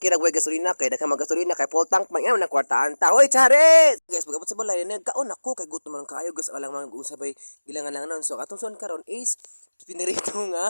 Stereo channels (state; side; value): inverted; both; correlation -1.00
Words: ra way gasolina kay daghan magasolina kay full tank man na kwartaan ta. Hoy, chares. Guys, pagabot sa balay nagkaon ako kay gutom man kaayo guys alang man usabay gilangan lang non. So atong son karon is pinirito